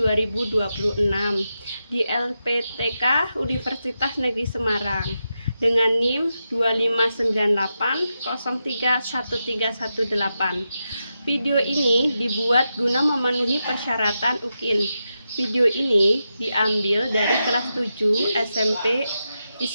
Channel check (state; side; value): inverted; both; correlation -0.88